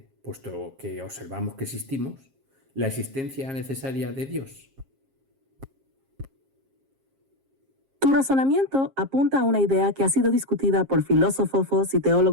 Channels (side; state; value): left; late; 7.5 ms